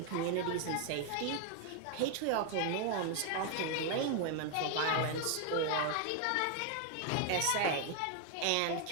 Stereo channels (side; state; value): both; different; correlation 0.00